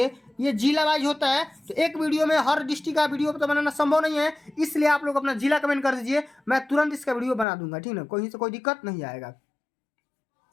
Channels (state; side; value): drops out; right; at 7.5 s